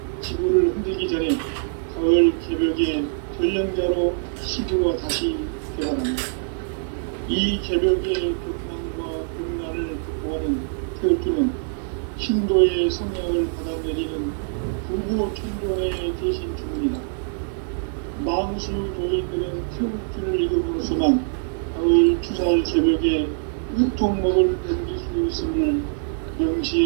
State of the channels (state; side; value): silent; left; 63 dB below the other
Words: 지구를 흔들기 전에 가을 개벽의 전령자로 시주가 다시 개발한다. 이 개벽의 벽난과 벽난을 극복하는 태울주는 신도의 성향을 받아내리는 구보 천존의 대신 주문이다. 망수 도인들은 태울주를 읽음으로써만 가을 추살 개벽의 유통목을 넘길 수 있음을